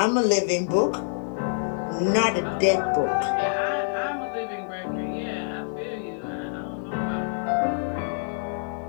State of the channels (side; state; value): right; silent; digital silence